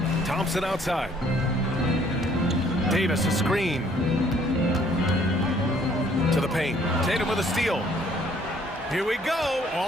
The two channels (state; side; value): normal; both; correlation 0.61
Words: Thompson outside. Davis a screen. To the paint. Tatum with a steal. Here we go,